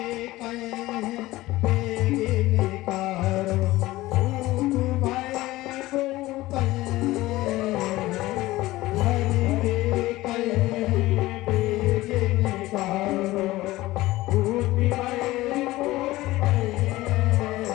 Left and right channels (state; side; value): quieter; right; 17.9 dB